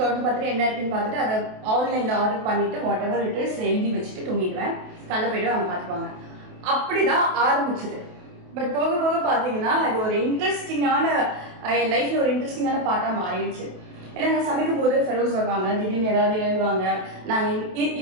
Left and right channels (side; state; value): left; late; 28 ms